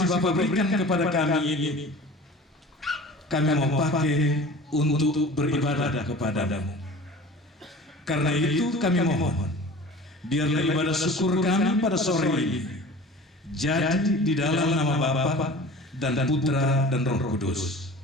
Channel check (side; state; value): both; normal; correlation 0.41